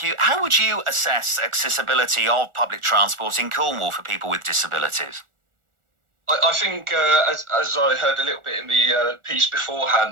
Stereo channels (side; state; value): left; late; 1.4 ms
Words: you. How would you assess accessibility of public transport in Cornwall for people with disabilities? I think, as I heard a little bit in the piece